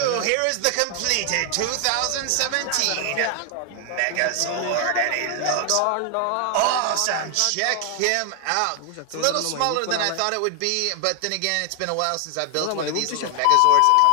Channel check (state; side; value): different; both; correlation 0.00